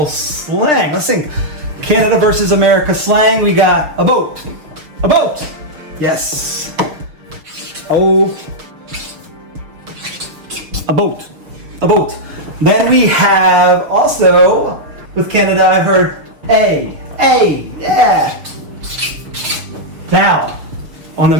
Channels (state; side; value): late; left; 6.6 ms